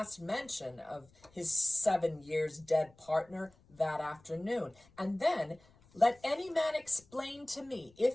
mention of his 7 years dead partner that afternoon. And then let any man explain to me,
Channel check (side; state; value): left; noise; rumble, 29 dB below the sound